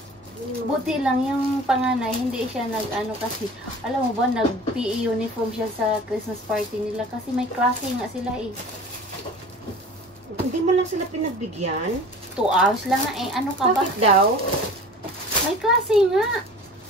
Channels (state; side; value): normal; both; correlation 0.42